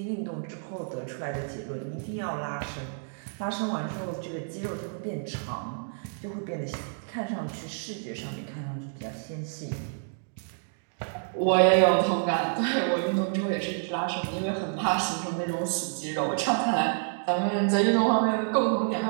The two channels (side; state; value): left; silent; digital silence